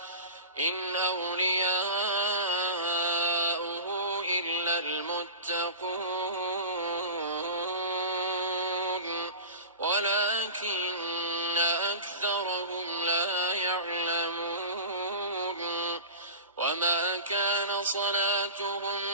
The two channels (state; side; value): inverted; both; correlation -0.33